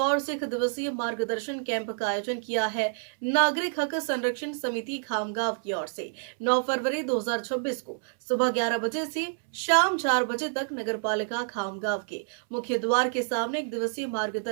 से 1 दिवसीय मार्गदर्शन कैंप का आयोजन किया है। नागरिक हक संरक्षण समिति खामगांव की ओर से 9 फरवरी 2026 को सुबह 11 बजे से शाम 4 बजे तक नगरपालिका खामगांव के मुख्य द्वार के सामने 1 दिवसीय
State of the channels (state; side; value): silent; left; 59 dB below the other